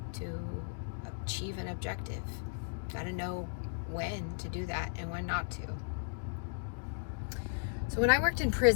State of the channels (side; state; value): right; silent; digital silence